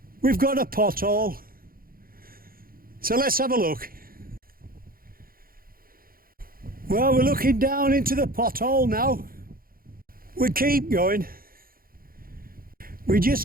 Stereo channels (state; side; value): late; left; 0.42 ms